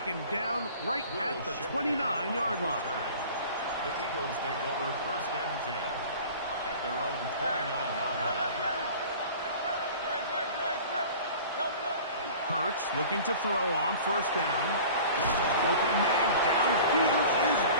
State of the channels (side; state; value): both; inverted; correlation -0.42